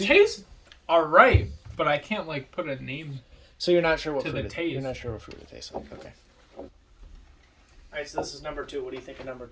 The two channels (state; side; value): identical; both; correlation 1.00